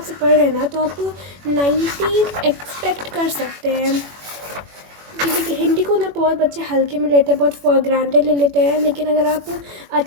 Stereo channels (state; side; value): late; left; 21 ms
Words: पढ़ रहे हैं ना तो आप 90 एक्सपेक्ट कर सकते हैं। क्योंकि हिंदी को ना बहुत बच्चे हल्के में लेते हैं, बहुत फॉर ग्रांटेड ले लेते हैं। लेकिन अगर आप